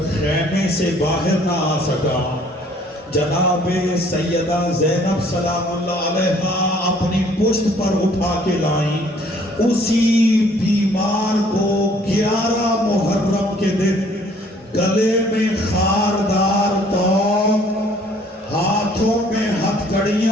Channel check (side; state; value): both; normal; correlation 0.58